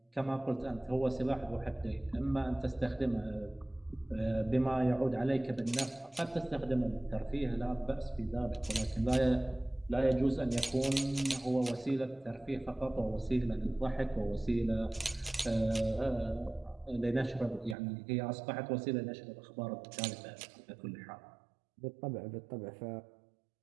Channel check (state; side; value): drops out; left; at 17.8 s